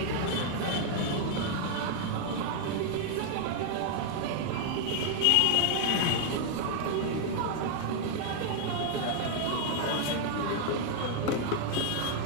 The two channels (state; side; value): different; both; correlation 0.00